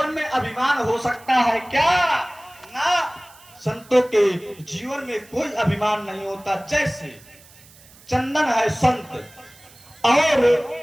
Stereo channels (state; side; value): noise; right; hiss, 24 dB below the sound